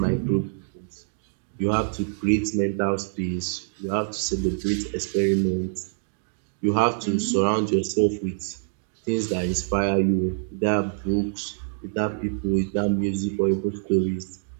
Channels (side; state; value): left; silent; digital silence